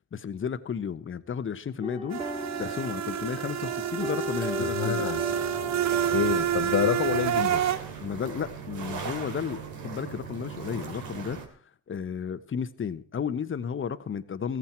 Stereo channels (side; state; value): both; normal; correlation 0.04